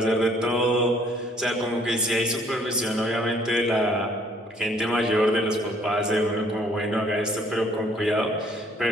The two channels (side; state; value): both; normal; correlation 0.61